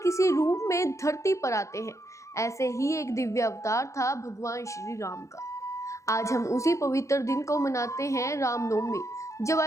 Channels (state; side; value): late; right; 0.15 ms